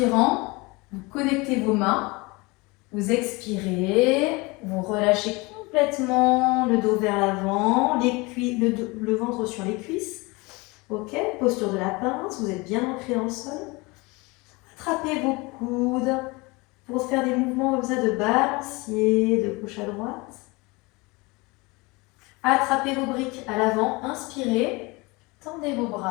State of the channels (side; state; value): right; quieter; 25.1 dB